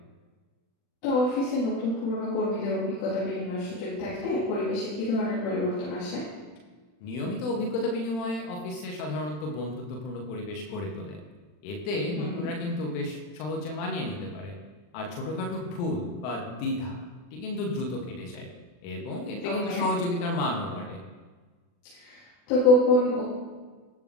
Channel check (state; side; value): late; right; 40 ms